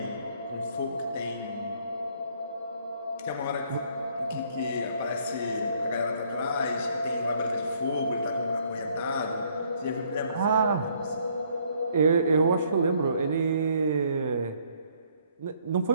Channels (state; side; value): inverted; both; correlation -0.66